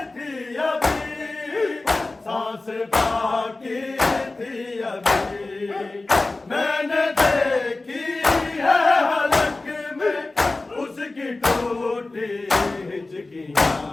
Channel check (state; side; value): quieter; right; 3.2 dB